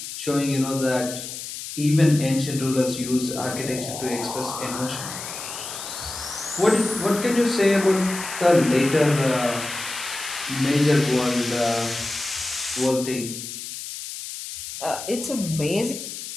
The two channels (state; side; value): noise; left; hiss, 9 dB below the sound